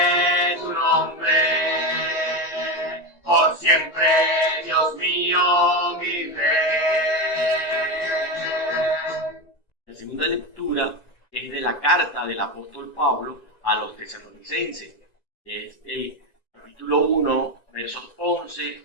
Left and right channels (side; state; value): right; late; 1.9 ms